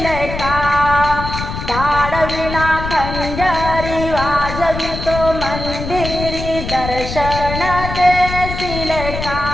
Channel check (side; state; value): left; noise; rumble, 6 dB below the sound